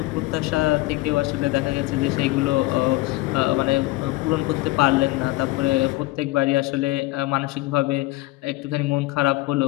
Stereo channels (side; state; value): right; quieter; 19.8 dB